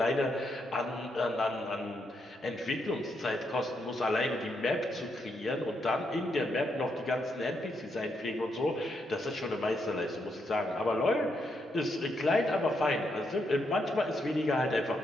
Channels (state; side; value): normal; both; correlation 0.79